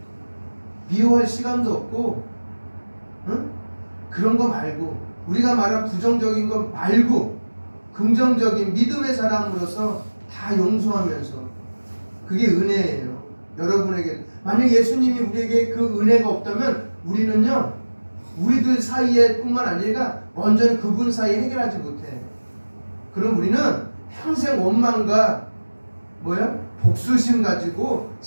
미워할 시간도 없고, 응? 그런 거 말고, 우리가 말한 부정적인 거 말고 긍정적인 믿음의 사람으로서 다 용서하면서, 그게 은혜예요. 여러분에게 만약 예수님이 우리에게 그 은혜가 없다면 우리는요, 우리들 사이에 뿐만 아니라 완전히 그분 사이에 해결하지 못해. 그럼 우리는 평생 원망과 복수심 가지고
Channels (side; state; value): both; inverted; correlation -1.00